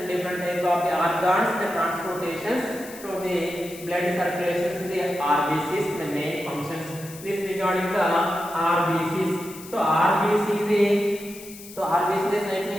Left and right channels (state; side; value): noise; left; hiss, 16 dB below the sound